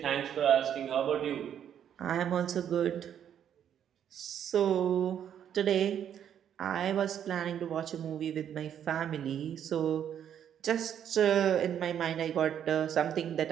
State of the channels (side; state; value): left; quieter; 9.4 dB